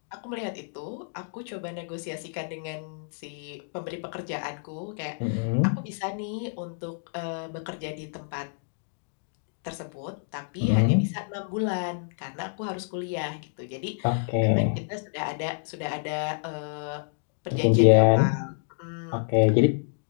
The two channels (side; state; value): right; silent; digital silence